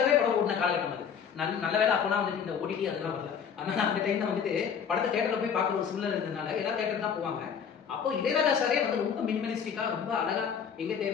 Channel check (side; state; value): right; quieter; 7.3 dB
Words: படம் ஓடின காலகட்டம் அது. நல்ல வேலை அப்போனா வந்துட்டு இந்த ஓடிடி அதெல்லாம் வரல. அதனால அந்த டைம்ல வந்துட்டு படத்தை தேட்டர்ல போய் பார்க்குற ஒரு சூழ்நிலை இருந்ததுனால எல்லா தேட்டர் தான் போவாங்க. அப்போ இளையராஜா சாரே வந்து ரொம்ப மினிமலிஸ்டிக்கா ரொம்ப அழகா எங்க